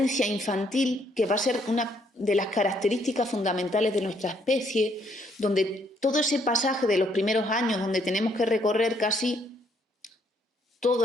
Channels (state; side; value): normal; both; correlation 0.69